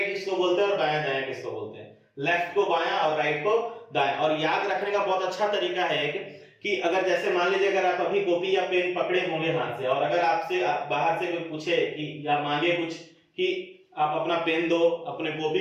किसको बोलते हैं और बायां दायां किसको बोलते हैं, लेफ्ट को बायां और राइट को दायां। और याद रखने का बहुत अच्छा तरीका है कि अगर जैसे मान लीजिए अगर आप अभी कॉपी या पेन पकड़े होंगे हाथ से, और अगर आपसे बाहर से कोई पूछे कि या मांगे कुछ कि आप अपना पेन दो, अपने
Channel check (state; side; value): identical; both; correlation 1.00